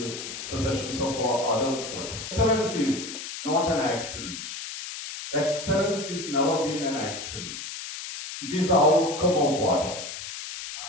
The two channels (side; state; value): left; noise; hiss, 8 dB below the sound